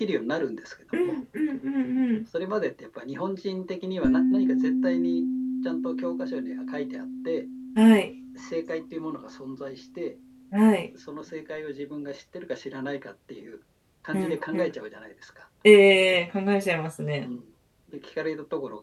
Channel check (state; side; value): identical; both; correlation 1.00